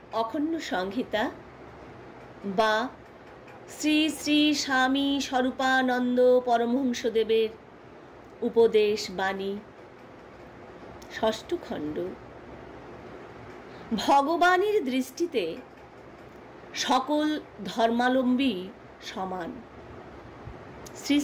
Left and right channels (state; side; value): identical; both; correlation 1.00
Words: অখণ্ড সংহিতা বা শ্রী শ্রী স্বামী স্বরূপানন্দ পরমহংসদেবের উপদেশ বাণী, ষষ্ঠ খণ্ড। ভগবানের দৃষ্টিতে সকল ধর্মাবলম্বী সমান। শ্রী